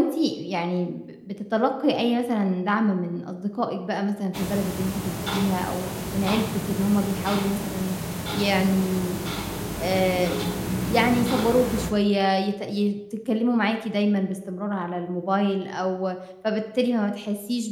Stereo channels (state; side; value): identical; both; correlation 1.00